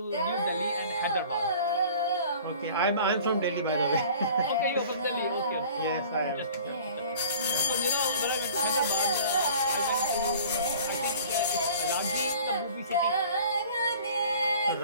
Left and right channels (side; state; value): both; inverted; correlation -0.47